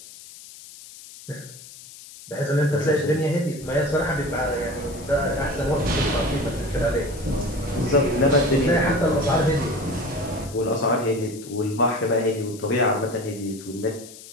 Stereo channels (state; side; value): noise; left; hiss, 17 dB below the sound